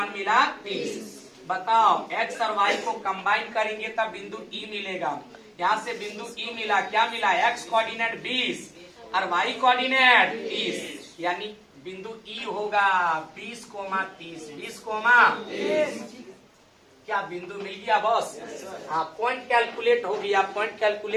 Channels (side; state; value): both; identical; correlation 1.00